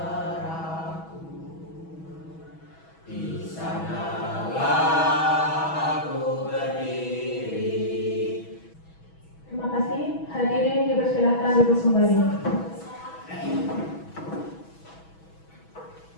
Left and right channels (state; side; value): late; right; 6.2 ms